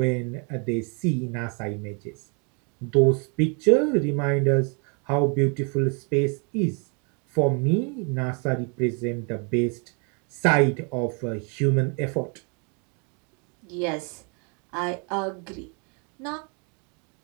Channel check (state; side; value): quieter; left; 36.2 dB